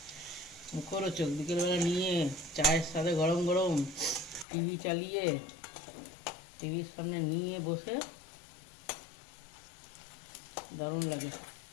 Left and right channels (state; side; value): drops out; right; at 4.5 s